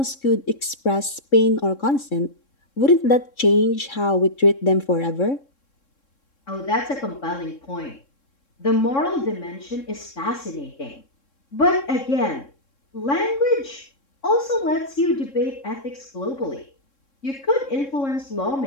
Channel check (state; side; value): late; right; 3.7 ms